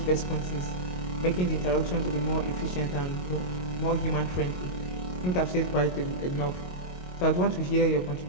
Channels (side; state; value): right; late; 22 ms